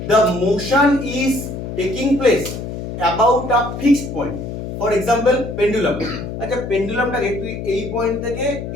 The motion is taking place about a fixed point. For example, pendulum. আচ্ছা, পেন্ডুলামটাকে তুই এই point থেকে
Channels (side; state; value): left; noise; hum, 7 dB below the sound